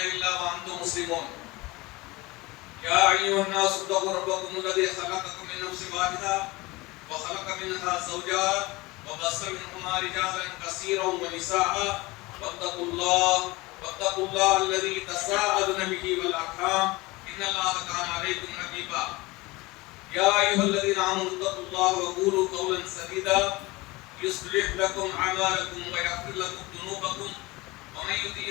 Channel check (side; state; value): right; quieter; 22.2 dB